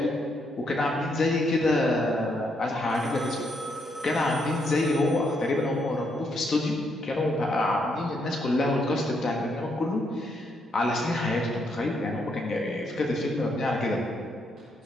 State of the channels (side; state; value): both; normal; correlation 0.76